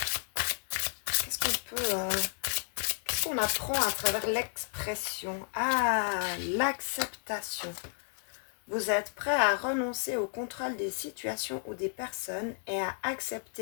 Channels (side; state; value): right; silent; 56 dB below the other